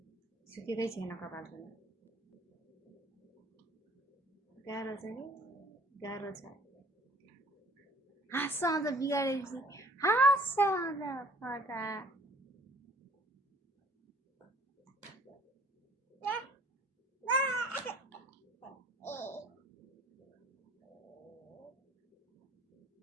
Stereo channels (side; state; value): both; normal; correlation 0.54